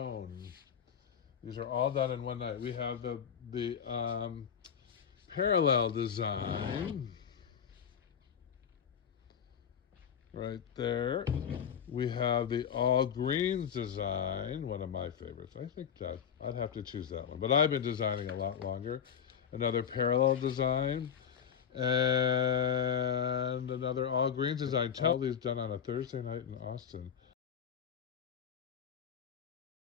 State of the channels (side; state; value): right; quieter; 7.9 dB